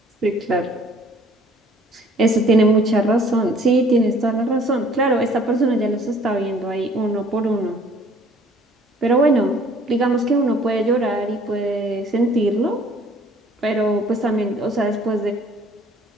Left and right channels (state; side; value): normal; both; correlation 0.56